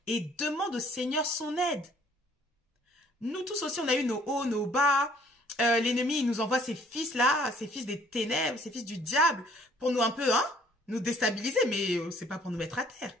et demande au Seigneur son aide. Nous tous aussi, on a eu nos hauts, nos bas. L'ennemi, il nous envoie ces fils-là, ces fils des ténèbres, ces fils du diable, pour nous un peu, hein, nous déstabiliser, mais c'est pas pour nous mettre à terre.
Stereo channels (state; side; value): normal; both; correlation 0.59